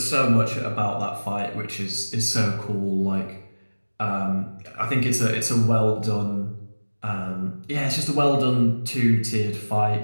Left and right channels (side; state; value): both; inverted; correlation -1.00